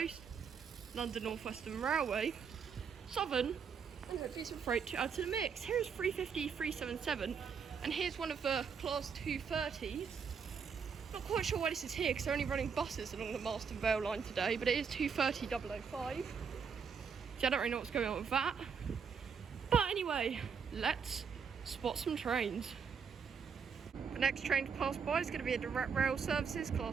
London North Western Railway, Southern, and hopefully some freight to add to the mix. Here's 350 377, and here's one of the Class 230s. Not quite sure why this is here because they're only running buses along the Marston Vale line today, but it is 230 005. So I don't really know what's going on with that. But anyway, let's spot some trains. The next train to pass by is going to be a direct rail services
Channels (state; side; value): quieter; left; 6.3 dB